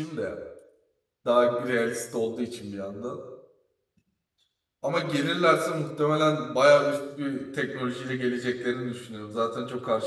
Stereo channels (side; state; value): both; identical; correlation 1.00